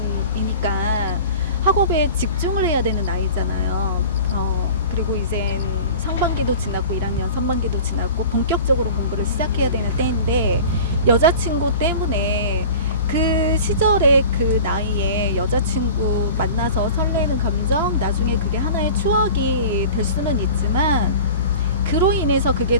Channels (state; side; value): inverted; both; correlation -0.40